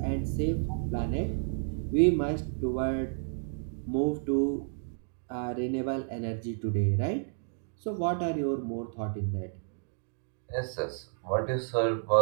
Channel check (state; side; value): silent; left; digital silence